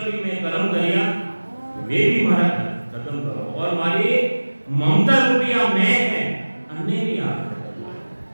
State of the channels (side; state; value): both; inverted; correlation -1.00